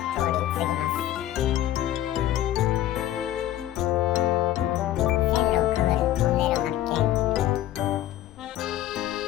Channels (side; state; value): right; quieter; 13.0 dB